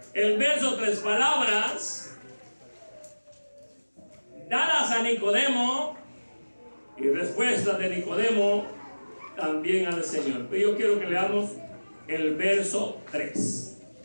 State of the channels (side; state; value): both; inverted; correlation -1.00